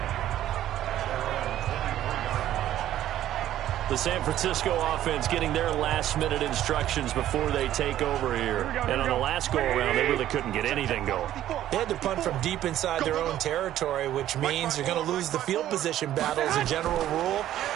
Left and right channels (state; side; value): quieter; left; 12.6 dB